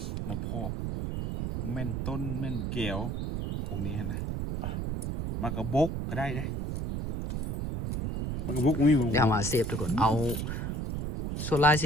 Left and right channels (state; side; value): noise; right; rumble, 3 dB below the sound